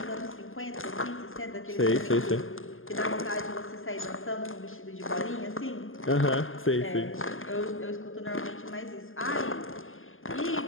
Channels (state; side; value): late; right; 0.59 ms